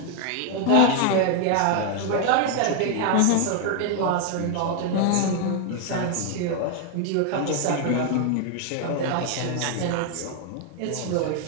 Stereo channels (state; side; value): different; both; correlation 0.00